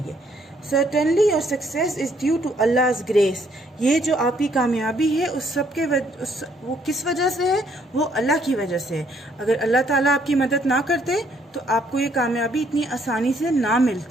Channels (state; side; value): normal; both; correlation 0.68